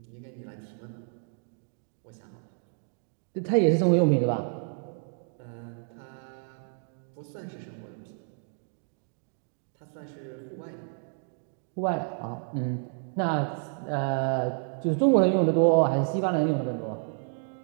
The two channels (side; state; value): left; silent; 58 dB below the other